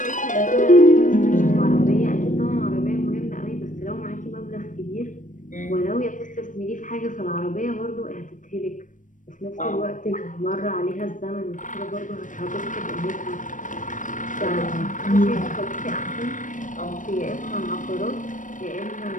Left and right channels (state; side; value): late; right; 0.37 ms